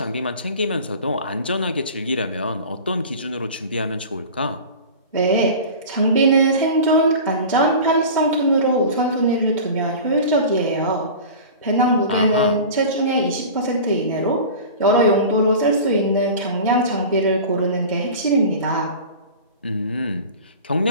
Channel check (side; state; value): both; inverted; correlation -0.36